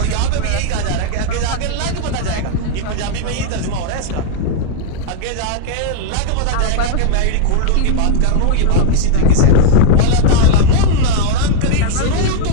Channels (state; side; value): different; both; correlation 0.00